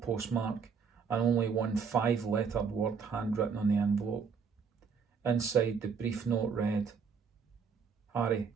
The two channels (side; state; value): left; quieter; 5.9 dB